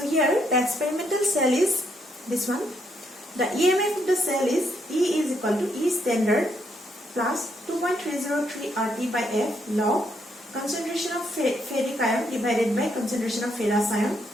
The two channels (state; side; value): normal; both; correlation 0.75